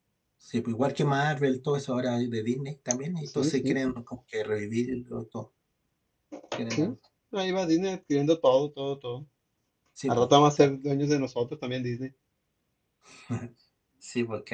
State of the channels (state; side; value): identical; both; correlation 1.00